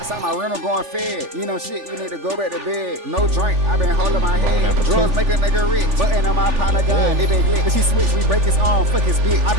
out my rental going fed. You know shit, you need to go back to bed. No drink, I been holding my head. Drugs make a nigga rich. Button on my partner gun, they been lit. If she switch, we break his arm, fuck his bitch. I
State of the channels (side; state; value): left; late; 3.4 ms